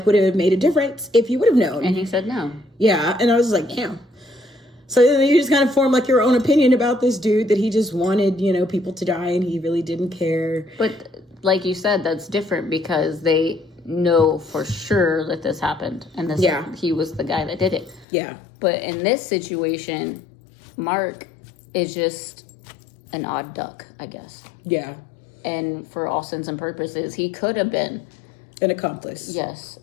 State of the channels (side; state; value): right; drops out; at 18.1 s